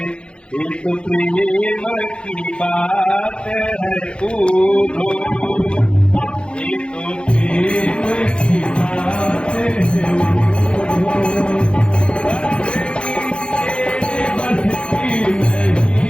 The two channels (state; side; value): late; right; 0.056 ms